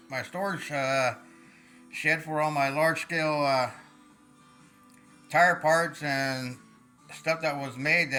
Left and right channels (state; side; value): identical; both; correlation 1.00